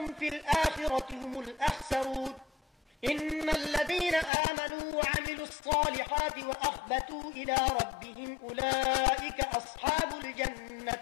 في الآخرة هم الأخسرون. إن الذين آمنوا وعملوا الصالحات وأخبتوا إلى ربهم أولئك أصحاب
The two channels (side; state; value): right; drops out; at 4.3 s